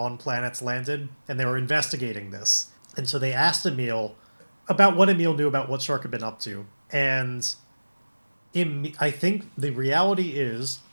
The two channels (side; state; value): both; inverted; correlation -1.00